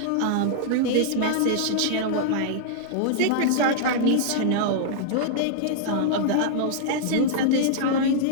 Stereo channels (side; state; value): both; different; correlation -0.01